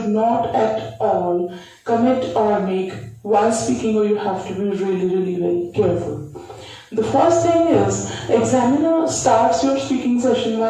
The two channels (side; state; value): both; identical; correlation 1.00